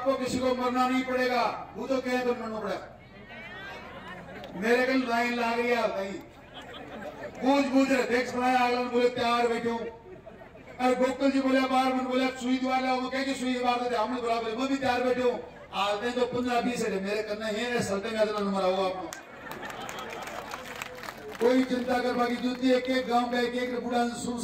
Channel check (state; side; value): identical; both; correlation 1.00